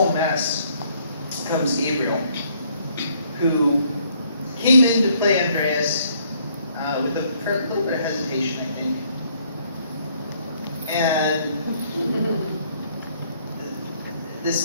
mess comes Gabriel, who came in to play Andreas with a little bit of hesitation, I think. And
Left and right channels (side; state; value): both; inverted; correlation -0.66